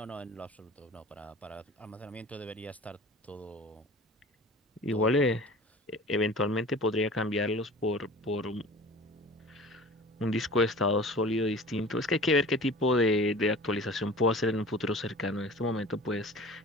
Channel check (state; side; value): normal; both; correlation 0.41